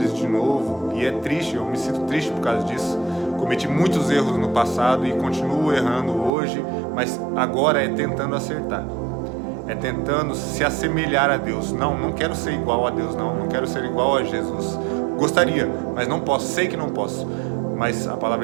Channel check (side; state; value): left; drops out; at 6.3 s